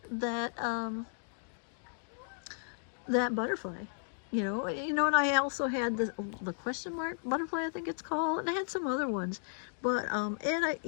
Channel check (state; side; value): silent; right; digital silence